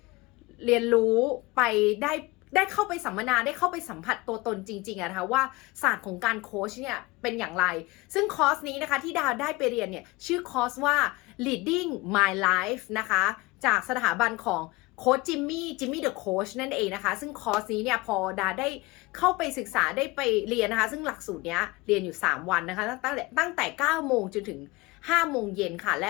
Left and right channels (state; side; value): quieter; right; 22.7 dB